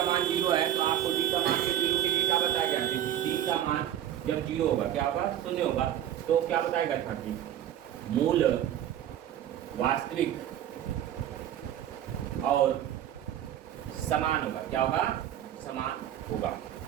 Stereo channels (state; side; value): quieter; left; 11.3 dB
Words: मान 0 है तो आपको d का मान 0 के लिए क्या बताया गया, d का मान जब 0 होगा क्या होगा, 0 होगा, तो क्या बताएगा, 30 मूल वास्तविक और समान होगा। क्या होगा, समान होगा।